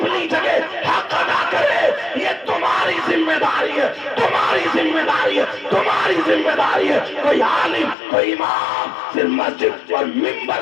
جگہ حق ادا کرے۔ یہ تمہاری ذمہ داری ہے، تمہاری ذمہ داری ہے، تمہاری ذمہ داری ہے۔ کوئی عالم، کوئی امام صرف مسجد اور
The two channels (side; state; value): right; drops out; at 8.0 s